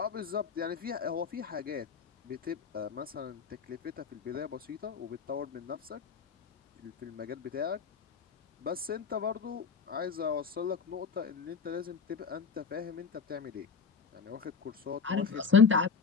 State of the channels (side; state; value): right; quieter; 5.9 dB